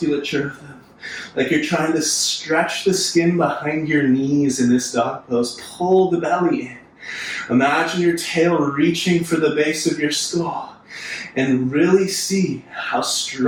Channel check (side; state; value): both; identical; correlation 1.00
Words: of them. Like you're trying to stretch the skin behind your knees in this dog pose. Pull the belly in. Imagine your tail reaching for the base of your skull. And really see how